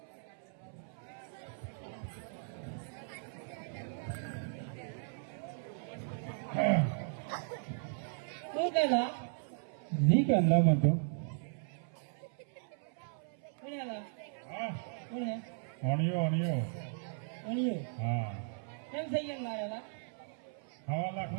શું કહેલા જી કહેલા મત કોણેલા હા કોણે ઓણિયો ઓણિયો ઓણિયો હા કેમ થઈ ગયા મારેલા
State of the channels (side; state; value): left; silent; 53 dB below the other